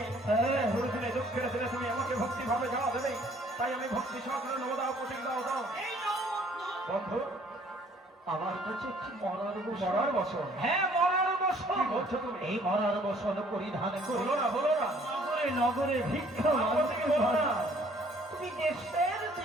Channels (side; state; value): both; normal; correlation 0.59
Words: দুঃখের দিনে তুমি আমাকে ভক্তি ভাবে যাওয়া দেবে তাই আমি ভক্তি সহকারে নমদাও প্রতীক দাও বন্ধু আমার কাছে একটি মরার বসন হ্যাঁ মরার বসন কি বলছো তুমি এই মরার বসন পরিধান করি বলো না নগরে ভিক্ষা তুমি দেশের